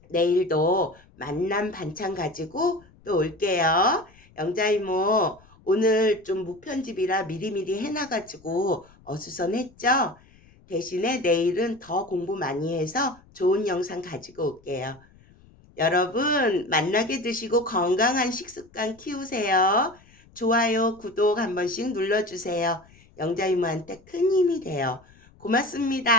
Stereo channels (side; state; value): left; noise; rumble, 28 dB below the sound